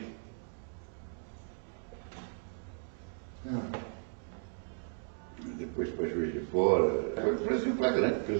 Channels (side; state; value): left; silent; 54 dB below the other